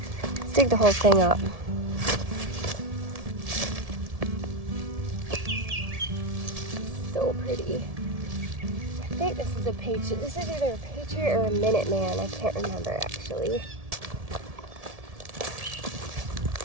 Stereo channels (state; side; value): late; left; 1.7 ms